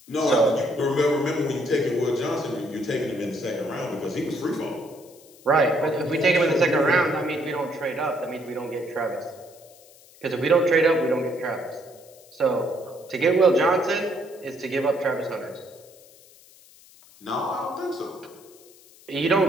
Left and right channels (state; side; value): noise; left; hiss, 25 dB below the sound